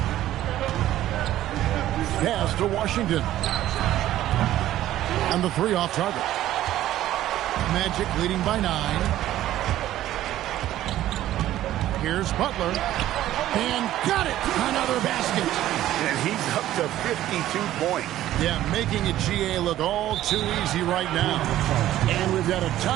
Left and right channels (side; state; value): left; quieter; 13.6 dB